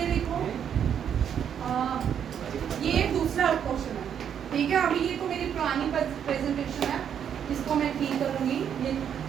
देखो, ये दूसरा क्वेश्चन है, ठीक है। अभी ये तो मेरी पुरानी प्रेजेंटेशन है, इसको मैं ठीक करूँगी। ये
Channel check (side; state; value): left; quieter; 8.6 dB